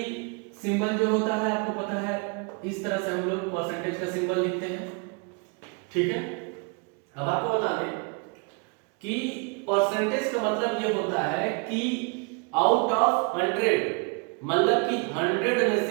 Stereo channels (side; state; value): left; quieter; 33.5 dB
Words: सिंबल जो होता है आपको पता है, इस तरह से हम लोग परसेंटेज का सिंबल लिखते हैं। ठीक है, अब आपको बता दें कि परसेंटेज का मतलब ये होता है कि आउट ऑफ 100, मतलब कि 100 में